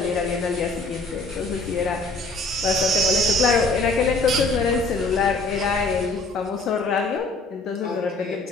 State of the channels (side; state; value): right; quieter; 3.1 dB